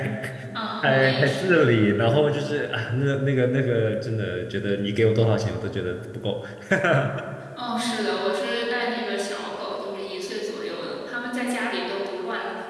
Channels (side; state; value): both; identical; correlation 1.00